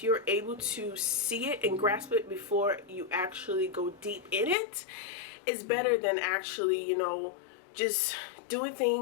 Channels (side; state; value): right; drops out; at 4.5 s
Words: you're able to see it and grasp it before you actually go deep in it, it's better than actually, just doing